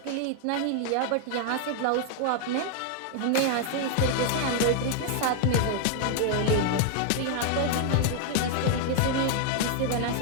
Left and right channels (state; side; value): different; both; correlation 0.00